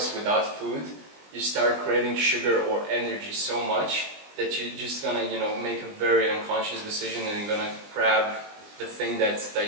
without food, you start craving sugar or energy so much that you're just gonna, you know, make a very unconscious decision, and you're gonna grab the thing that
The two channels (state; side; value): late; left; 20 ms